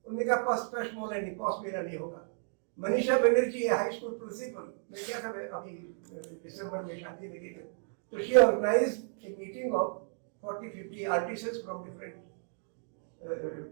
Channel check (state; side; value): silent; left; digital silence